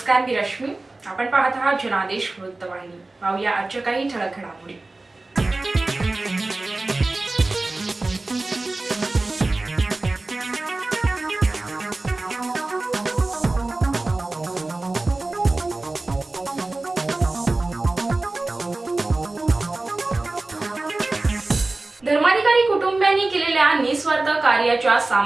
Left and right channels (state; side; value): quieter; left; 3.1 dB